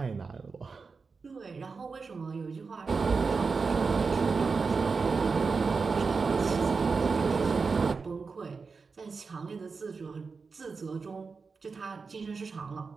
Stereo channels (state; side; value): quieter; left; 4.7 dB